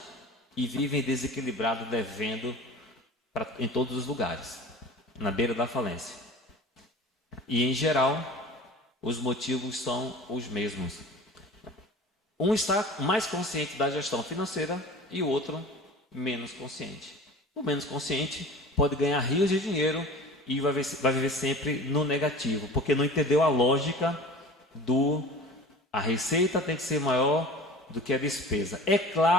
e vivem desequilibrados, devendo em todos os lugares, na beira da falência. E em geral, os motivos são os mesmos. Um está mais consciente da gestão financeira e o outro menos consciente. O menos consciente pode ganhar rios de dinheiro e vai viver sempre no negativo, porque não entendeu a lógica a receita tem que ser maior do que a despesa. É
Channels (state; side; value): normal; both; correlation 0.39